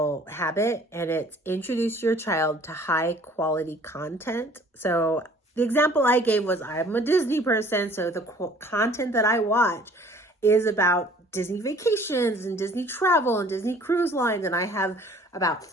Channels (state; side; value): normal; both; correlation 0.53